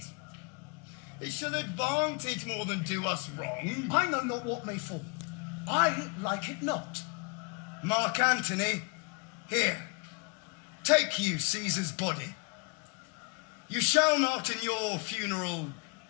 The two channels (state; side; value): quieter; right; 32.6 dB